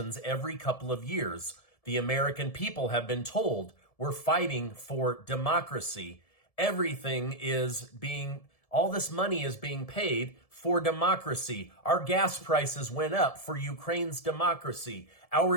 every couple of years. The American people have been told we're fighting for democracy. All this money is being paid for democracy. Our gas prices went up for Ukraine's democracy. Our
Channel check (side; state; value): right; late; 1.7 ms